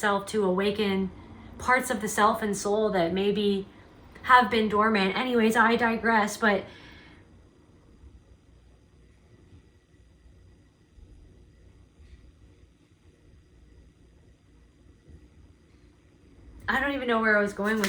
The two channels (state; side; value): identical; both; correlation 1.00